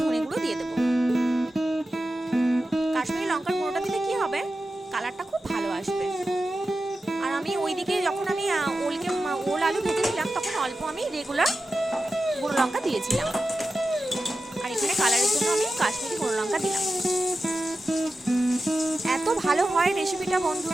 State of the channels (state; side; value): normal; both; correlation 0.92